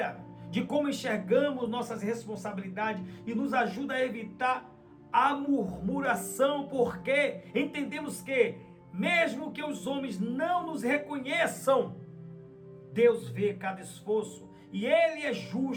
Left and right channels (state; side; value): identical; both; correlation 1.00